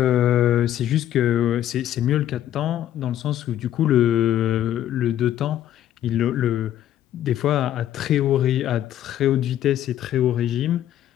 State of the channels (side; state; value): right; quieter; 11.7 dB